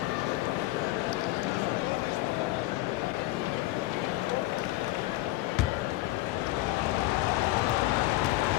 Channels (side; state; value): right; quieter; 18.2 dB